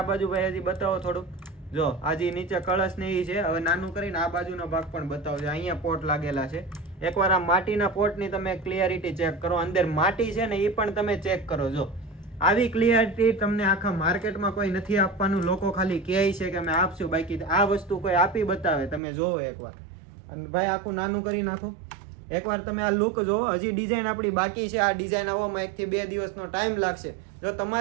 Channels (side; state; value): left; drops out; at 19.0 s